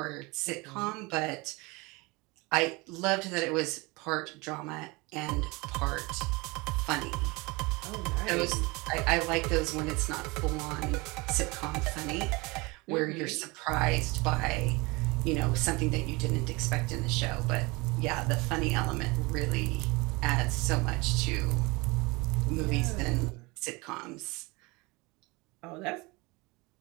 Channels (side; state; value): left; quieter; 25.2 dB